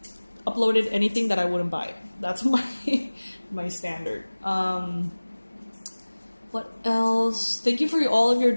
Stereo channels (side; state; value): both; inverted; correlation -1.00